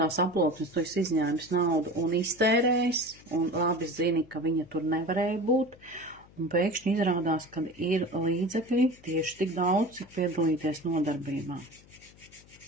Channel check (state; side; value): noise; left; hum, 25 dB below the sound